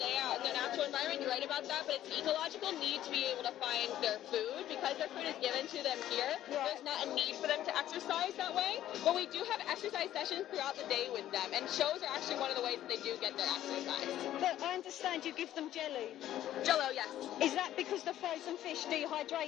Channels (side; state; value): right; quieter; 12.6 dB